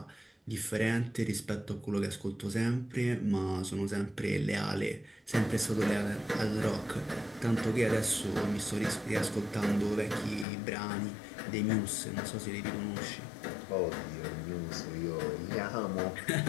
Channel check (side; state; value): right; drops out; at 10.5 s